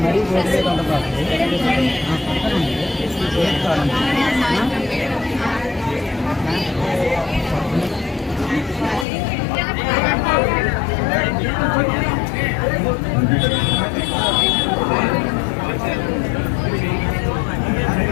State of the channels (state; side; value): drops out; right; at 9.1 s